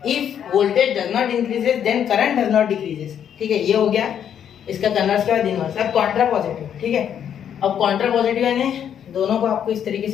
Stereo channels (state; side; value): quieter; right; 9.0 dB